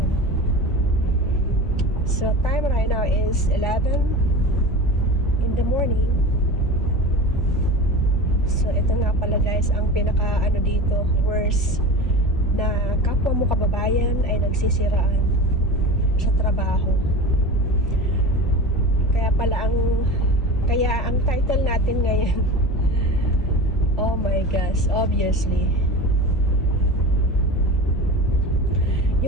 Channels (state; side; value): noise; left; rumble, 9 dB below the sound